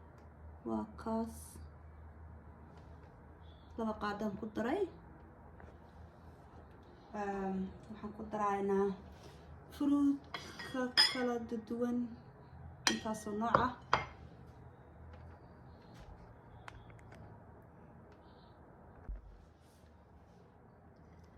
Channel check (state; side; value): identical; both; correlation 1.00